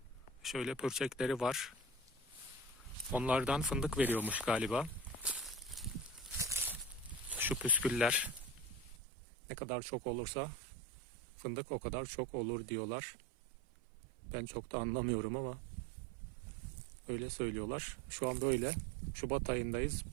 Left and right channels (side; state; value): left; drops out; at 9.0 s